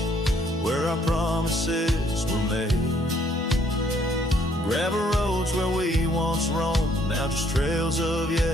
where our promises were made. Gravel roads where we once roamed, now just trails of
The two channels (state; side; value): normal; both; correlation 0.66